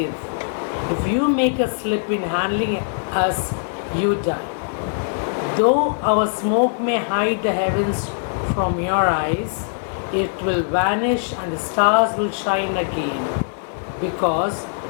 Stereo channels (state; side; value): silent; right; 56 dB below the other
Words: If you make a slip in handling us, you die. Though our smoke may hide the heavens from your eyes, it will vanish and the stars will shine again. Because